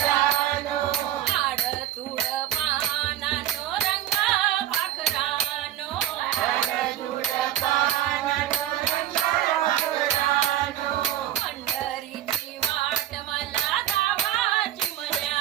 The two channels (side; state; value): left; quieter; 12.6 dB